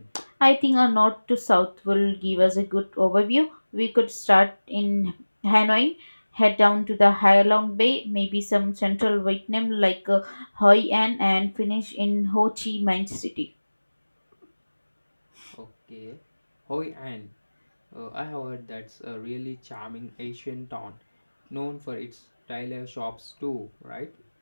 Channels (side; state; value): both; inverted; correlation -1.00